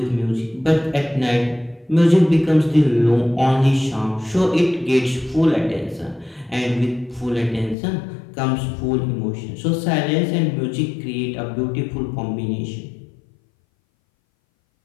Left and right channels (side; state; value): right; drops out; at 7.8 s